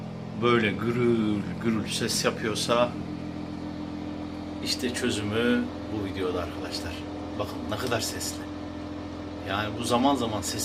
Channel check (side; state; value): both; identical; correlation 1.00